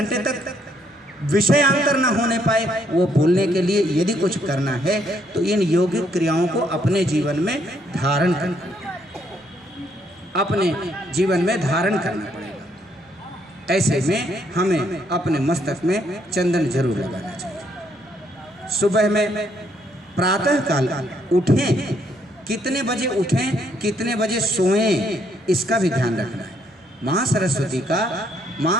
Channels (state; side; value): normal; both; correlation 0.71